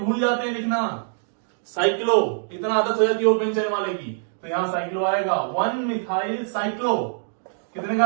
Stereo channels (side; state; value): left; silent; digital silence